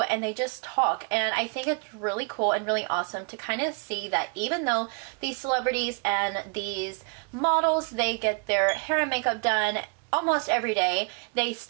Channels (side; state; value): left; quieter; 34.9 dB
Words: and they just talk. And I think it's really cool and really awesome to kind of see that even though these celebrities and these models, they get their hair and makeup done almost every day, they